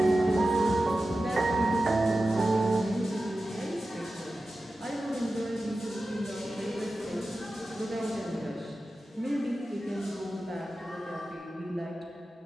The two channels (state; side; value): normal; both; correlation 0.94